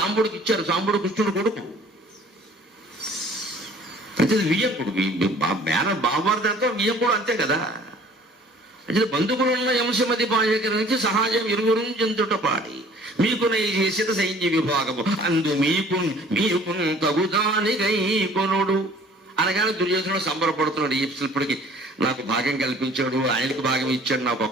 ఇచ్చారు. సాంబుడు కృష్ణుడు కొడుకు. అయితే వియ్యకుడు, బావమరిదంతా వియ్యకుడు, అంతే కదా. అంటే బంధువులున్న అంశమది బాయకరించి సహాయం ఇరువురు చెందుట పాడి మీకు చేసిన సైన్య విభాగము అందు మీకు తగుదానిగై కొనుడు అనగానే దుర్యోధనుడు సంబరపడుతున్నాడు. ఇప్పటికి నాకు భాగం కల్పించాడు, ఆయనకు భాగం ఇచ్చాడు, నాకు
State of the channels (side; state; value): both; normal; correlation 0.52